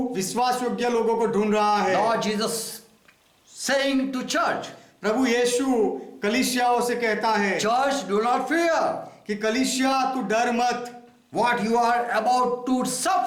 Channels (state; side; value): identical; both; correlation 1.00